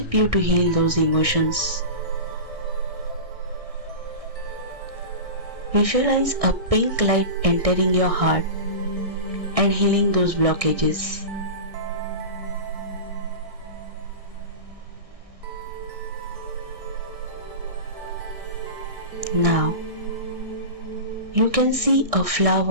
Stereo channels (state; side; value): late; left; 1.6 ms